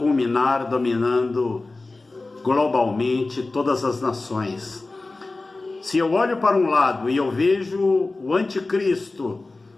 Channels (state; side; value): quieter; right; 3.3 dB